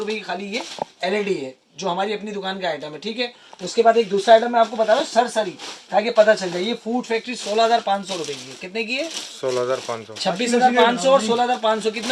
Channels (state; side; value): identical; both; correlation 1.00